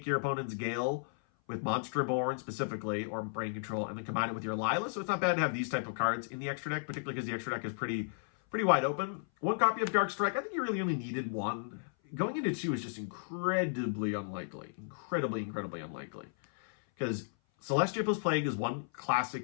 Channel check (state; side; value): silent; right; 55 dB below the other